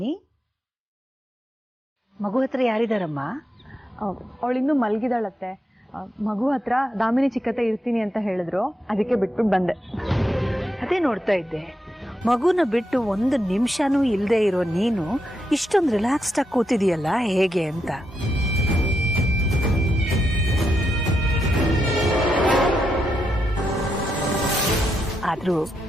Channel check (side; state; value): both; normal; correlation 0.83